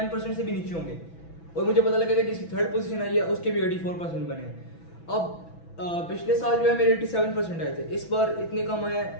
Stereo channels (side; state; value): right; late; 6.0 ms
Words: से भी नीचे होंगे, और मुझे पता लगेगा कि इसकी 3rd पोजीशन आई है उसके भी 84% बने। अब पिछले साल जो है मेरे 87% आए थे, इस बार इतने कम आए